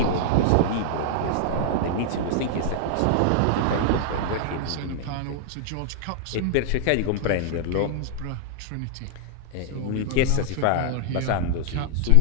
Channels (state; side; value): different; both; correlation 0.00